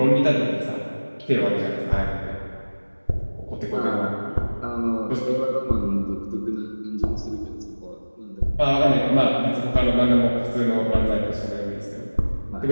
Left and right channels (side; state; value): both; inverted; correlation -1.00